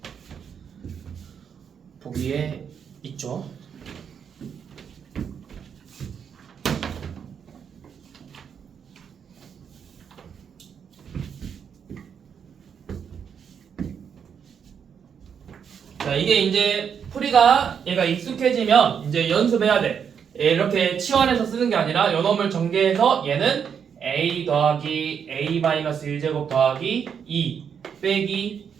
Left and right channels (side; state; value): left; quieter; 7.4 dB